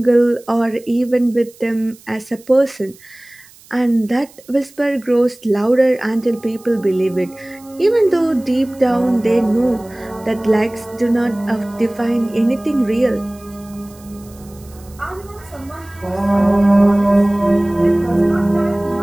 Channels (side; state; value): right; noise; hiss, 25 dB below the sound